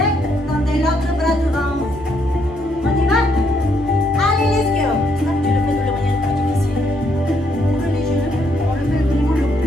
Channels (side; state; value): both; normal; correlation 0.73